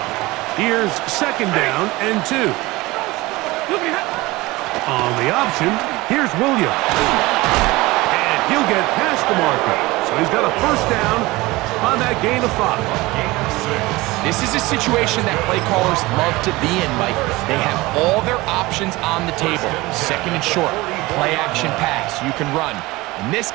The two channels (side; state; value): left; quieter; 20.8 dB